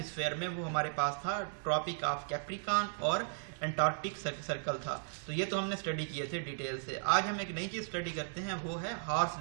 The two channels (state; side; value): silent; left; 54 dB below the other